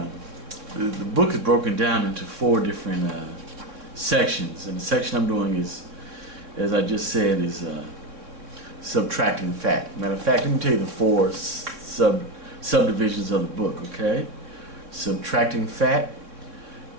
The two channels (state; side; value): late; left; 3.6 ms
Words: the book is broken down into 4 different sections, and the section I'm doing is, as I just said, is subtracting fat. Matter of fact, let me tell you the 4 subdivisions of the book. Okay, subtracting fat,